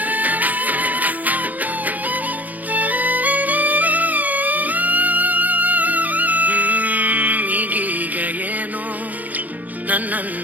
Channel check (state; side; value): late; left; 0.080 ms